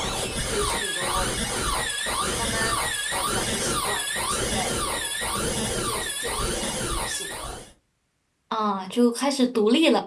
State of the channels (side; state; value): both; identical; correlation 1.00